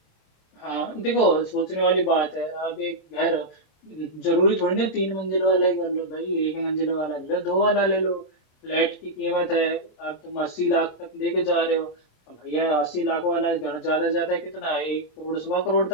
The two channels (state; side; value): late; right; 26 ms